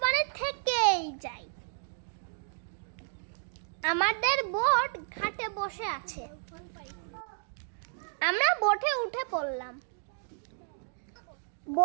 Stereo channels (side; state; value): left; silent; digital silence